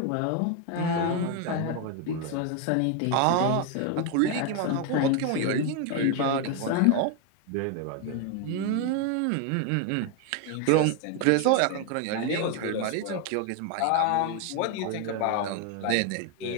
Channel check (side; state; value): both; different; correlation 0.01